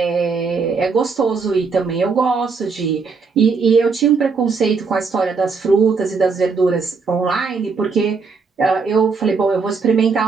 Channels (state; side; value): quieter; left; 4.8 dB